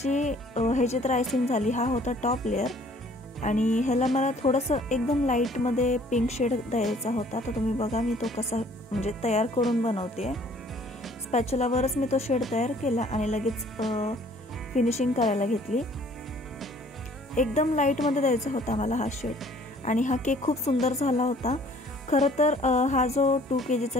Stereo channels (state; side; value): normal; both; correlation 0.56